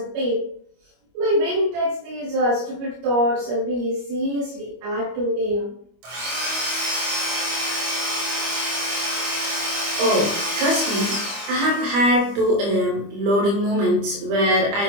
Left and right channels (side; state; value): left; late; 25 ms